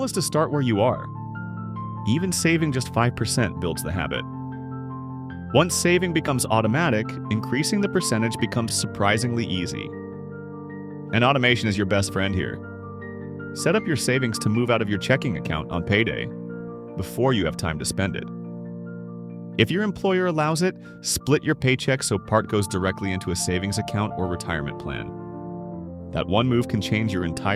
is to start where you are. Even saving just 5% builds the habit. Once saving becomes automatic, increasing the percentage becomes surprisingly easy. And automation is your best friend here. Set up your savings to move out of your checking account on payday before you have time to spend it. If your employer allows it, split your paycheck so part goes directly into a savings account or retirement plan. That one move can change your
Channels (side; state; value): both; identical; correlation 1.00